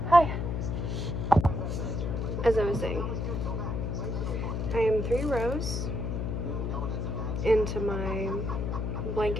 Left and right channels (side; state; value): left; noise; hum, 1 dB below the sound